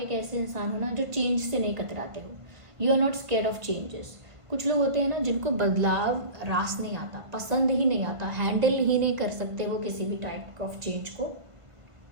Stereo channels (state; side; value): late; left; 1.5 ms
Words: ऐसे इंसान हो ना जो चेंज से नहीं कतराते हो। You are not scared of changes. कुछ लोग होते हैं ना जिनको बदलाव रास नहीं आता, पसंद ही नहीं आता, हैंडल ही नहीं कर सकते वो किसी भी टाइप ऑफ चेंज को।